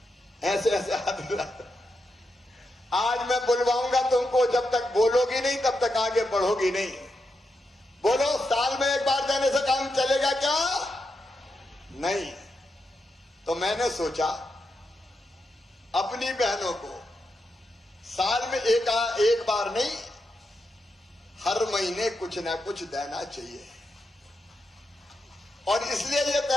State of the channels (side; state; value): both; normal; correlation 0.85